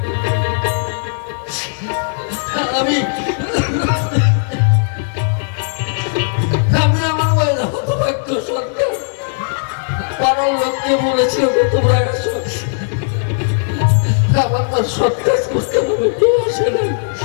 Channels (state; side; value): silent; right; digital silence